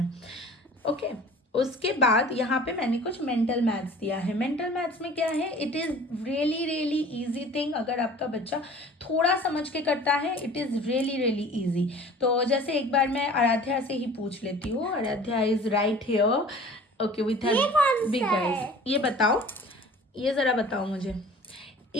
ओके। उसके बाद यहाँ पे मैंने कुछ मेंटल मैथ्स दिया है। मेंटल मैथ्स में क्या है, it is really really easy thing. अगर आपका बच्चा थोड़ा समझ के करता है, it is really really easy. तो जैसे एक बार मैं आराध्या से ही पूछ लेती हूँ। Aaradhya is right here, okay, with her big guys. ये बताओ, ये ज़रा बताओ मुझे,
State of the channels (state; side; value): normal; both; correlation 0.45